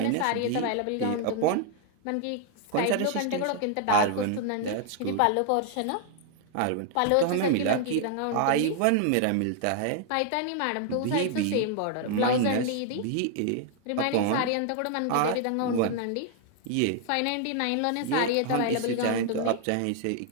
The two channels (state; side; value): different; both; correlation 0.00